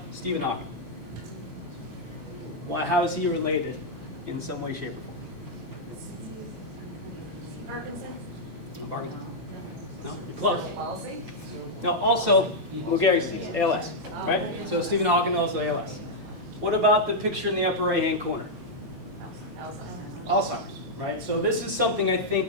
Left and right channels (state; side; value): late; left; 10 ms